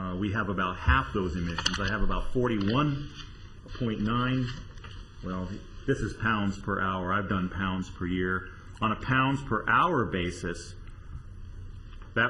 We have about half those emissions. I have about 41.9, well, this is pounds per hour. I've done pounds per year. On a pounds per hour basis,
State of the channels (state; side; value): identical; both; correlation 1.00